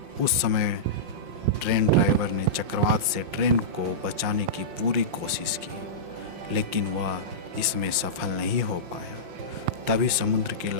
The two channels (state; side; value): late; left; 5.6 ms